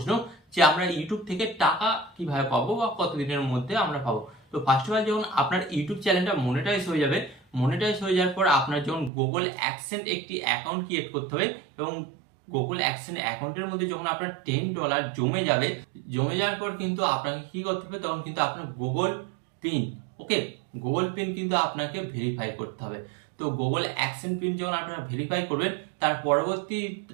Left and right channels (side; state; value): left; drops out; at 9.1 s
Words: যে আমরা ইউটিউব থেকে টাকা কিভাবে পাবো বা কতদিনের মধ্যে আমরা পাবো? তো ফার্স্ট অফ অল যখন আপনার ইউটিউব চ্যানেলটা মনিটাইজ হয়ে যাবে, মনিটাইজ হয়ে যাওয়ার পর আপনার যখন গুগল অ্যাডসেন্স একটি অ্যাকাউন্ট ক্রিয়েট করতে হবে এবং গুগল অ্যাডসেন্স অ্যাকাউন্টের মধ্যে যখন আপনার $10 জমে যাবে, জমে যাওয়ার পর কিন্তু আপনাকে কি করতে হবে? তখন কিন্তু আপনার গুগল পিন, ওকে, গুগল পিন কিন্তু আপনাকে ভেরিফাই করতে হবে। তো গুগল অ্যাডসেন্স পিন যখন আপনারা ভেরিফাই করবেন, তার পরবর্তী